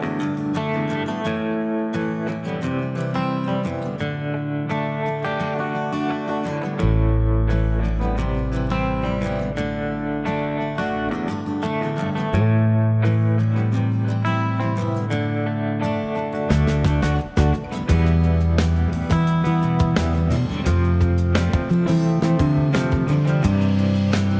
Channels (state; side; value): identical; both; correlation 1.00